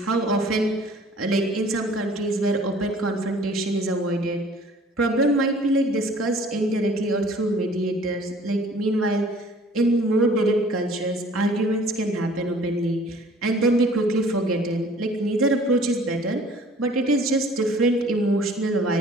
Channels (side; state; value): both; normal; correlation 0.52